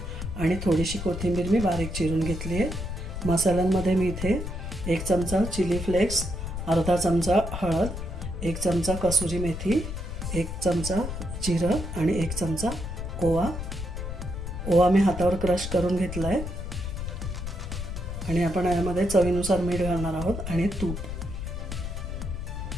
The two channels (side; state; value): left; noise; rumble, 6 dB below the sound